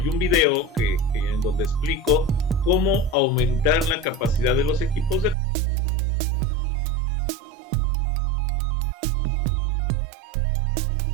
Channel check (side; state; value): left; drops out; at 5.4 s